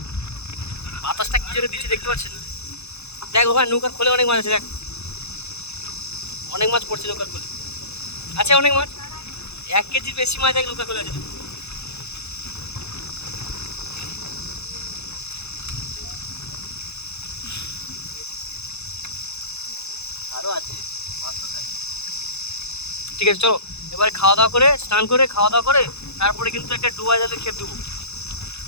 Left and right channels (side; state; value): right; late; 0.80 ms